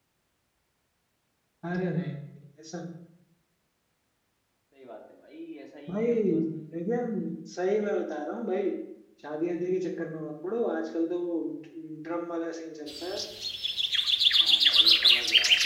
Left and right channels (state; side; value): identical; both; correlation 1.00